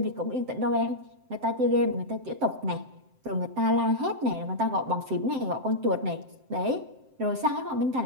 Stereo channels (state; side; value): late; left; 7.7 ms